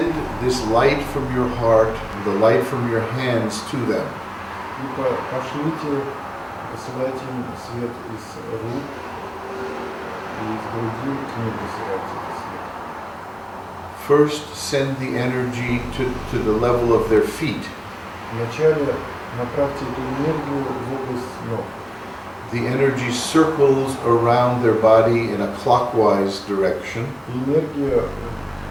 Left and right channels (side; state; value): both; identical; correlation 1.00